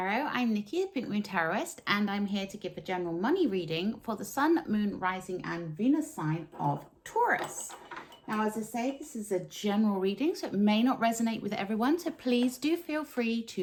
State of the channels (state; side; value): identical; both; correlation 1.00